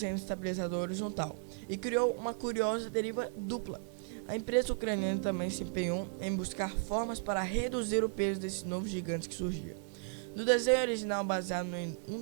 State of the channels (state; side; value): silent; left; 54 dB below the other